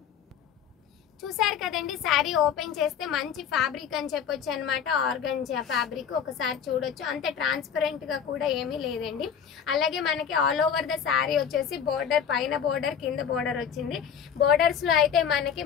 చూసారు కదండి, శారీ ఓపెన్ చేస్తే మంచి ఫ్యాబ్రిక్ అని చెప్పొచ్చు అనమాట. ఆర్గంజా ఫ్యాబ్రిక్ ఒకసారి చూడొచ్చు. అంతే ట్రాన్స్పరెంట్ గా కూడా ఏమీ లేదండి. అలాగే మనకి ఆల్ ఓవర్ ద శారీ వచ్చేసి బోర్డర్, పైన బోర్డర్ కింద బోర్డర్ వచ్చింది. బోర్డర్స్ లో అయితే మనకి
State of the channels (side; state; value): right; quieter; 7.9 dB